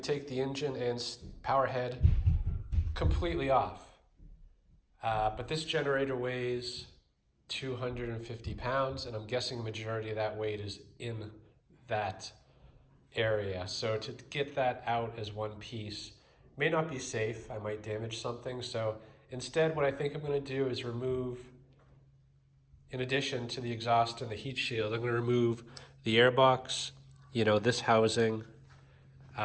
take the engine and power head completely off. But this generator weighs 250 pounds, and I'm guessing the majority of that weight is in that area. So to get that out as one piece may not be safe. I might damage something. So instead, what I think I'm going to do is remove, in addition to the exhaust and the heat shield, I'm going to remove the airbox, you know, this housing,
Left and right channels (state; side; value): identical; both; correlation 1.00